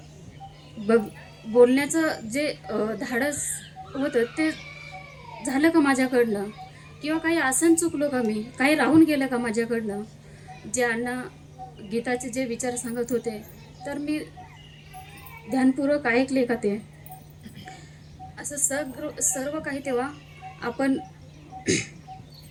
बोलण्याचं जे धाडस होतं ते झालं का माझ्याकडनं, किंवा काही आसन चुकलो का, मी काही राहून गेलं का माझ्याकडनं. जे अण्णा गीताचे जे विचार सांगत होते तर मी ध्यानपूर्वक ऐकले का ते, असं सर्व काही तेव्हा आपण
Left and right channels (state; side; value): identical; both; correlation 1.00